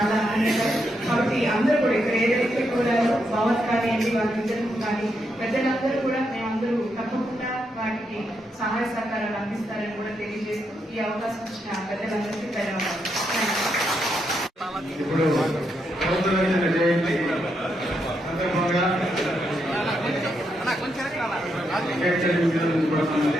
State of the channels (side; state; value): both; normal; correlation 0.81